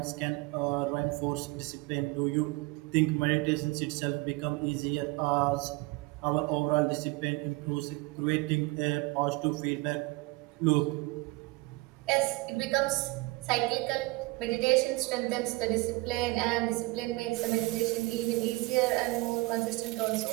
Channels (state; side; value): quieter; left; 23.4 dB